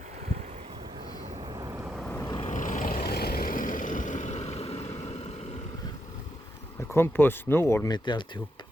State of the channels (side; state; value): both; normal; correlation 0.82